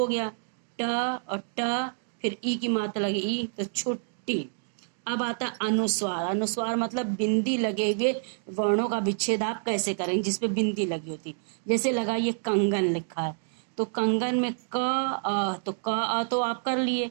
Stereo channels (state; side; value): silent; left; digital silence